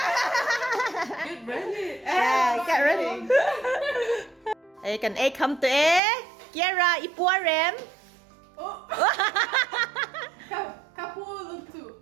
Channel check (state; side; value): drops out; left; at 6.0 s